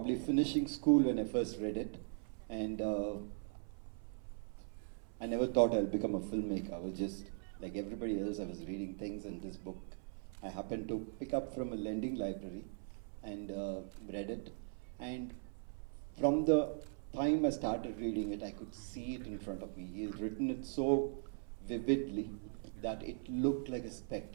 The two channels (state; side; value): silent; left; 51 dB below the other